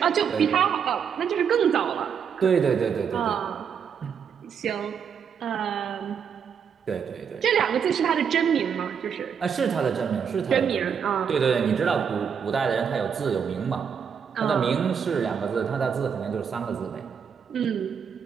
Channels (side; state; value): left; quieter; 7.2 dB